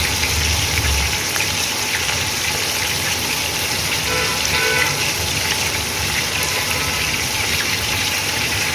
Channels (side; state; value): both; identical; correlation 1.00